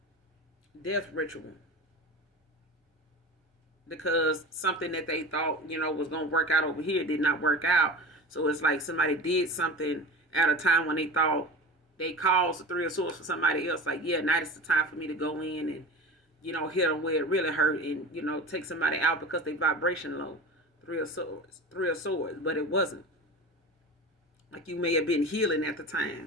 death ritual, because something that they thought, was going to work out over here did not work out. So it's like somebody did something at a time when they thought they caused the Three of Swords for somebody else. Like, yeah, now it's the time for me to go in and, hit them where it really hurt, and, take somebody out because they vibration low. Three of Swords. But it wasn't. Like you may have been healing at the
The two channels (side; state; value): both; normal; correlation 0.32